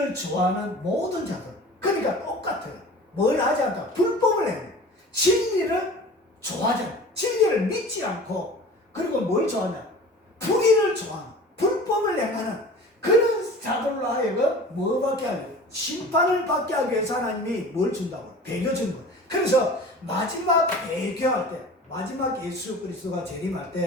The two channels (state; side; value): normal; both; correlation 0.40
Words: 좋아하는 모든 자들. 그러니까 똑같아요. 뭘 하지 않다? 불법을 해요. 진리를 좋아하지 않고, 진리를 믿지 않고, 그리고 뭘 좋아하냐? 불의를 좋아하는, 불법을 행하는 그런 자들로 하여금 뭐 받게 하려고? 심판을 받게 하기 위해서 하나님이 뭘 준다고? 배교 준 거예요. 그래서 마지막 배교할 때, 마지막 예수 그리스도가 재림할